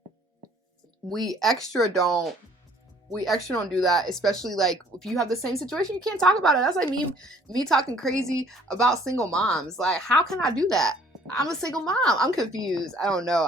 we extra don't do that, especially like if you have the same situation, you can't talk about it. That's like me talking crazy about single moms. Like, how can I do that? I'm a single mom. I'm confused. I don't know.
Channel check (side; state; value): both; normal; correlation 0.58